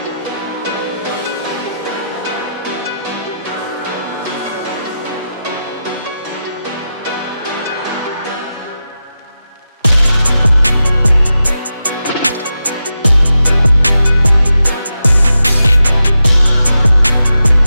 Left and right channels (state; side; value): inverted; both; correlation -0.90